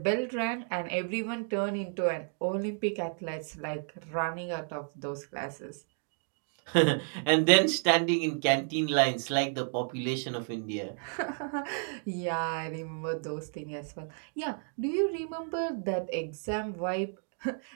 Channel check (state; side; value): silent; left; 57 dB below the other